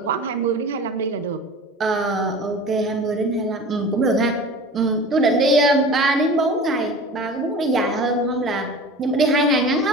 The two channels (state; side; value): normal; both; correlation 0.37